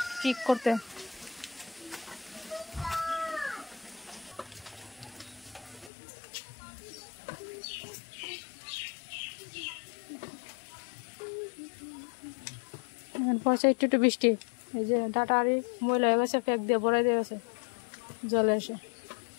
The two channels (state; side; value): drops out; right; at 5.9 s